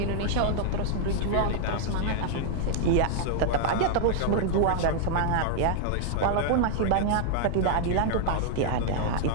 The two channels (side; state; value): both; different; correlation 0.00